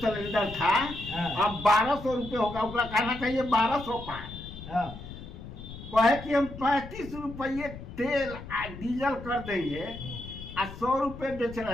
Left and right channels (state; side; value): noise; left; rumble, 12 dB below the sound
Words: था, अब 1200 रुपये होगा। उसका कहना चाहिए 1200 पार। कहे कि हम 35 रुपये तेल डीजल कर देंगे और 100 रुपये बेच